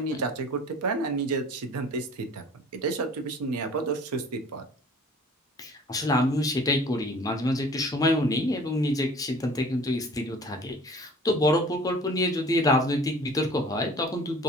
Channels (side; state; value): both; normal; correlation 0.48